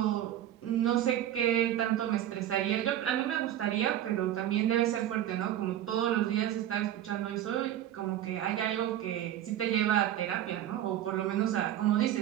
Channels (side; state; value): left; quieter; 11.9 dB